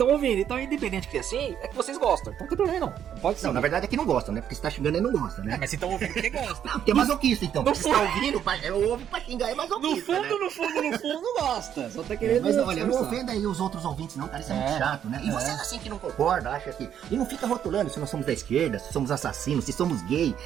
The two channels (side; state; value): left; quieter; 9.5 dB